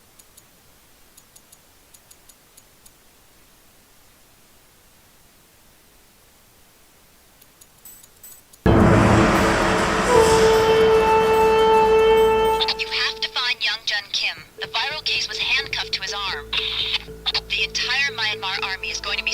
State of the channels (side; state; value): both; identical; correlation 1.00